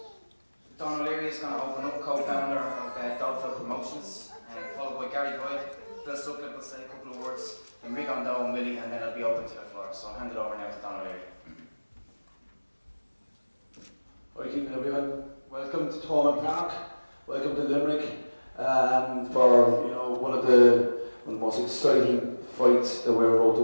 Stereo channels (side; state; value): both; inverted; correlation -1.00